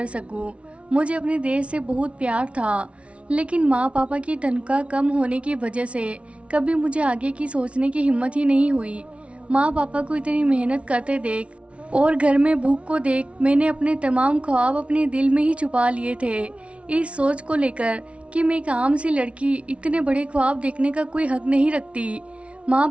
सकूं। मुझे अपने देश से बहुत प्यार था, लेकिन माँ पापा की तनख्वाह कम होने की वजह से कभी मुझे आगे की सोचने की हिम्मत ही नहीं हुई। माँ पापा को इतनी मेहनत करते देख और घर में भूख को देख मैंने अपने तमाम ख्वाब अपने दिल में ही छुपा लिए थे, इस सोच को लेकर कि मैं एक आम सी लड़की इतने बड़े ख्वाब देखने का कोई हक नहीं रखती। माँ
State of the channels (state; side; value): late; left; 0.061 ms